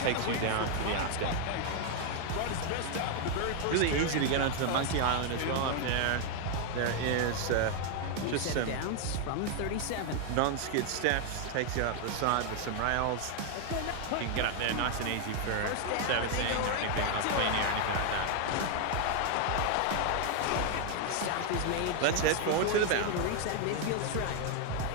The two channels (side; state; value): both; different; correlation 0.00